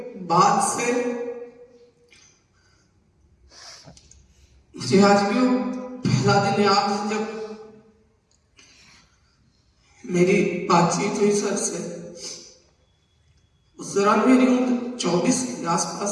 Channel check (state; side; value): identical; both; correlation 1.00